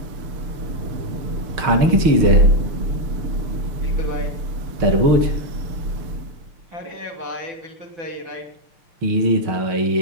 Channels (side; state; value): left; late; 6.4 ms